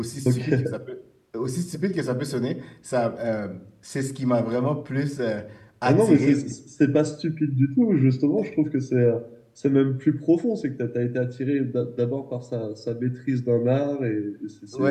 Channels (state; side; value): identical; both; correlation 1.00